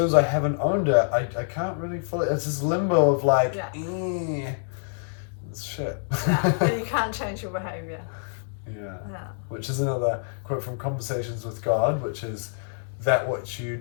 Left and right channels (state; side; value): silent; right; digital silence